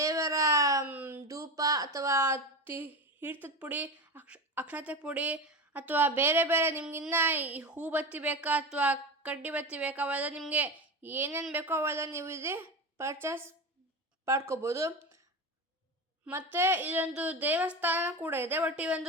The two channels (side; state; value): both; normal; correlation 0.24